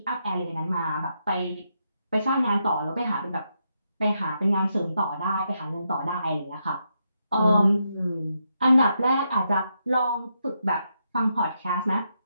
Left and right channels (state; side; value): inverted; both; correlation -0.82